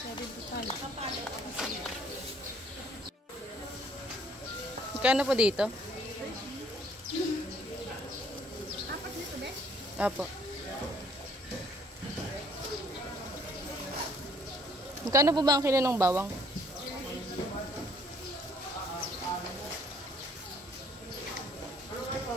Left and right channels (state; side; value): normal; both; correlation 0.61